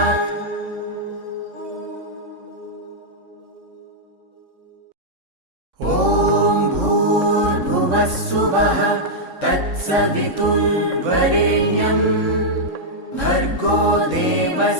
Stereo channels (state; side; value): late; left; 3.6 ms